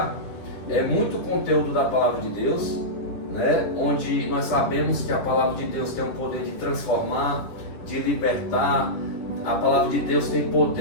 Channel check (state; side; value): late; right; 10 ms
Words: é muito conteúdo da palavra de Deus, né? Onde nós sabemos que a palavra de Deus tem o poder de transformar, de libertar. A palavra de Deus tem